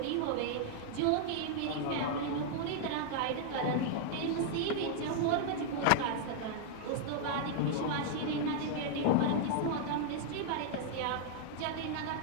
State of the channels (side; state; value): both; different; correlation 0.00